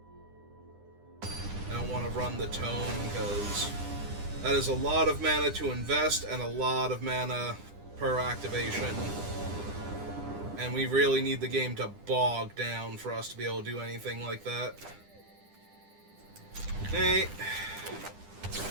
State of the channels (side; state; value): left; late; 10 ms